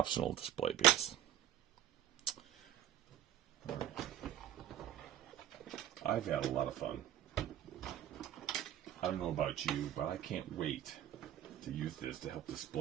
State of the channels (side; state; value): left; quieter; 12.2 dB